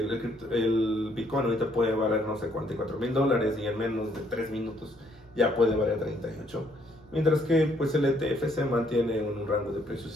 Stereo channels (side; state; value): both; normal; correlation 0.68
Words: Bitcoin ahorita puede valer, no sé, $44,000 y en menos de 3 minutos ya puede valer 38. Mientras que pues el ETF se mantiene en un rango de